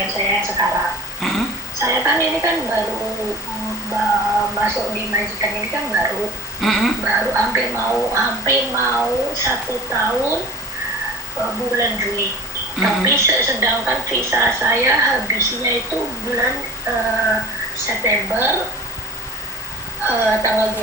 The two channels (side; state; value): both; normal; correlation 0.39